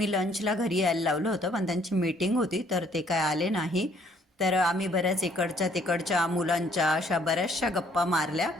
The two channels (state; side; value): normal; both; correlation 0.63